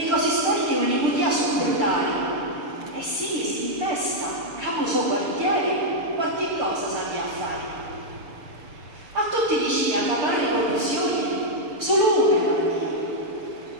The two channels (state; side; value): late; left; 6.7 ms